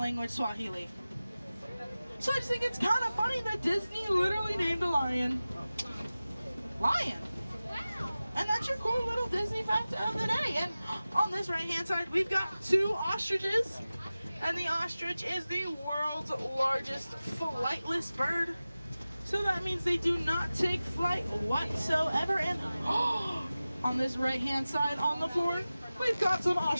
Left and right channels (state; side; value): inverted; both; correlation -0.96